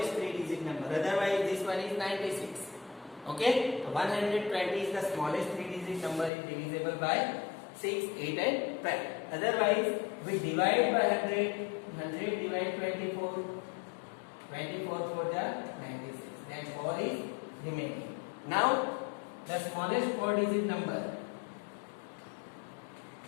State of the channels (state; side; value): drops out; right; at 6.3 s